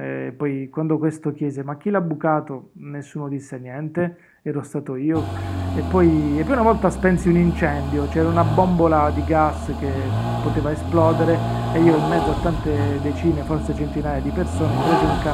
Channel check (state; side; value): identical; both; correlation 1.00